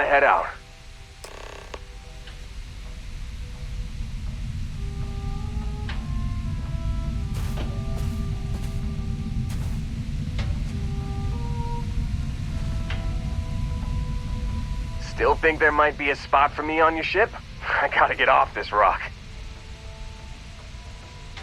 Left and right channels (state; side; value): identical; both; correlation 1.00